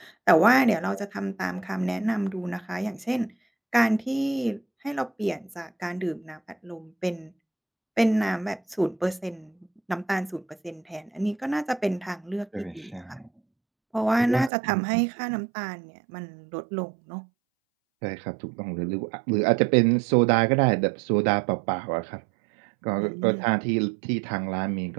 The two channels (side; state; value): left; drops out; at 14.5 s